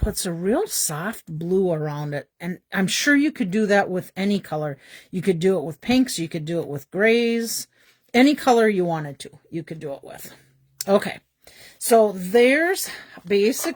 a real soft blue around it. And I'm sure you could do that with any color. You could do it with pinks. You could do it with grays. Any color you wanted to, you could do it with. Okay, so there's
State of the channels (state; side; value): identical; both; correlation 1.00